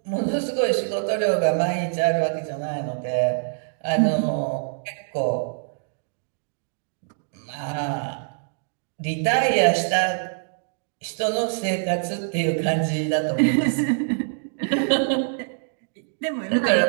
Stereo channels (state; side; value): silent; left; digital silence